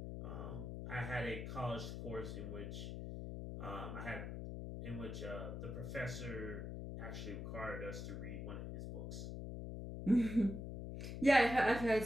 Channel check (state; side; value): noise; left; hum, 6 dB below the sound